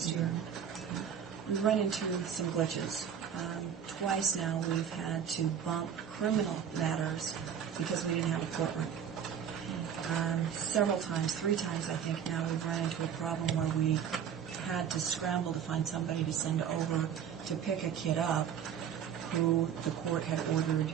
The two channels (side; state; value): left; quieter; 8.4 dB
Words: year. We've run into some glitches. Twice now we've had to bump criminal matters because we didn't have a courtroom. Several times, 3 times I think now, we've run into a problem where we had to scramble to find somebody to send over to pick a kid up who the court had ordered